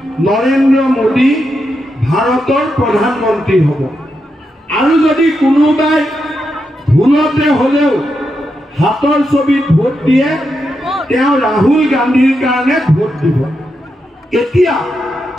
নৰেন্দ্ৰ মোদী ভাৰতৰ প্ৰধানমন্ত্ৰী হ'ব আৰু যদি কোনোবাই ভুলতে হ'লেও হাতৰ ছবিত ভোট দিয়ে তেওঁ ৰাহুল গান্ধীৰ কাৰণে ভোট দিব এতিয়া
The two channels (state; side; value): normal; both; correlation 0.85